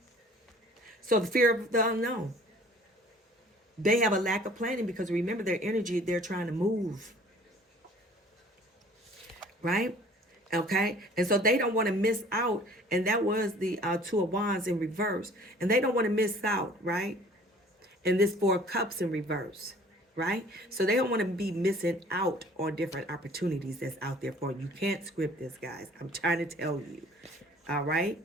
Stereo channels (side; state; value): both; normal; correlation 0.51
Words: So the fear of the unknown. They have a lack of planning because remember their energy, they're trying to move. Right? Okay? And so they don't want to miss out. And that was the Two of Wands in reverse. And they don't want to miss out, right? And this Four of Cups in reverse. Right? So they don't want to be missing out on different opportunities that's out there for you. You can't script this, guys. I'm trying to tell you. All right?